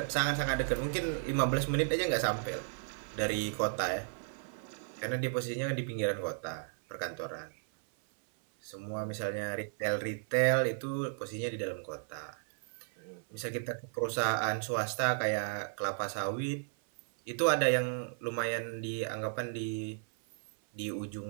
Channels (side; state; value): left; silent; 55 dB below the other